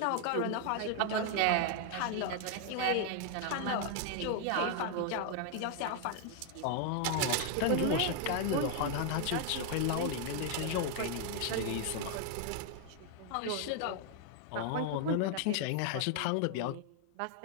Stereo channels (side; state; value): both; different; correlation 0.00